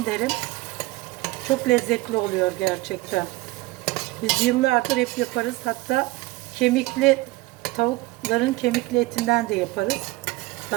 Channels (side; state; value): left; quieter; 20.1 dB